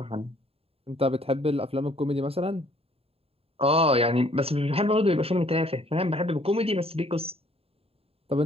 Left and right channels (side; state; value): left; late; 0.28 ms